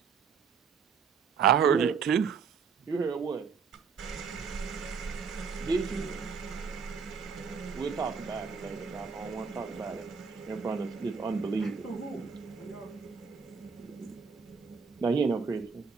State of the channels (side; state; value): left; quieter; 5.9 dB